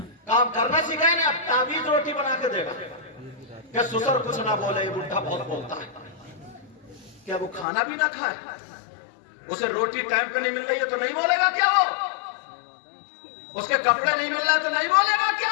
کام کرنا سکھایا نہیں. اب تعویذ روٹی بنا کے دے گا کہ سسر کچھ نہ بولے، یہ بڈھا بہت بولتا ہے. کیا وہ کھانا بھی نہ کھائے؟ اسے روٹی ٹائم پہ نہیں مل رہی ہے تو نہیں بولے گا کیا؟ وہ اس کے کپڑے نہیں مل رہے تو نہیں بولے گا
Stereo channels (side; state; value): right; drops out; at 7.7 s